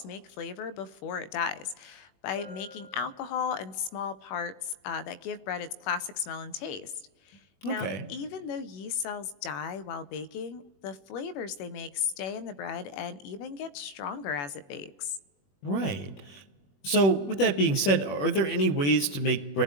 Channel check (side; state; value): right; late; 21 ms